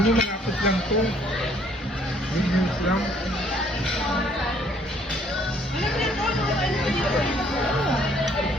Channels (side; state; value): both; normal; correlation 0.63